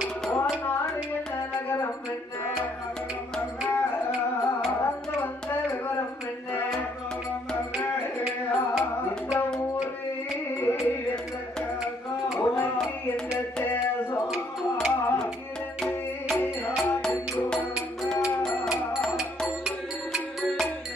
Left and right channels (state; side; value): normal; both; correlation 0.68